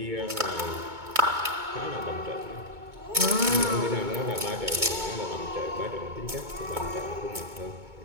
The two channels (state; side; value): late; left; 2.2 ms